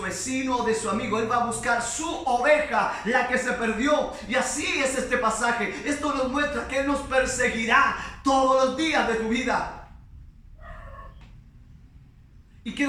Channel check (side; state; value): both; identical; correlation 1.00